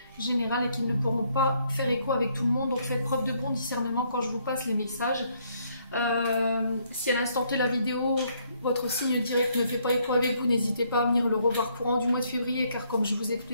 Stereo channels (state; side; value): inverted; both; correlation -0.70